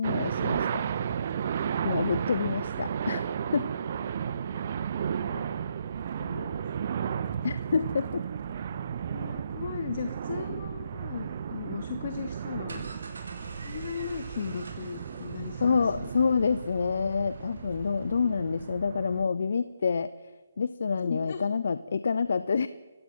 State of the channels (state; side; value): inverted; both; correlation -0.78